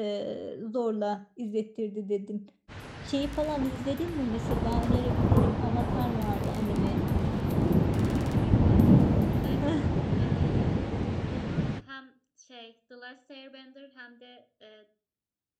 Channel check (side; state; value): both; identical; correlation 1.00